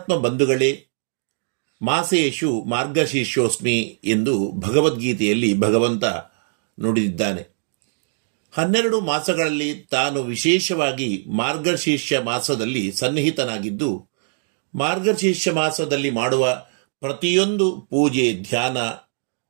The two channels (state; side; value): silent; left; digital silence